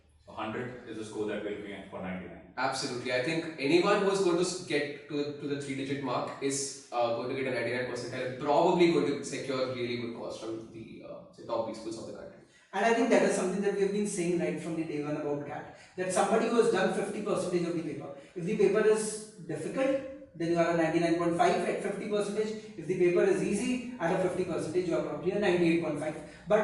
So 100 is the score that we're looking at for 99. Absolutely. I think anyone who is going to get to the 3-digit mark is going to get a 99 percentile and probably going to secure really good calls from the say top B schools of the country. And I think that is something that we have been saying right from the day one about CAT. That somebody who has done 50% of the paper, if the paper is difficult, then you are a 99.5 at 50%. If the paper is easy, at a 50%, you are probably a 98.5.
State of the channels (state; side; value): identical; both; correlation 1.00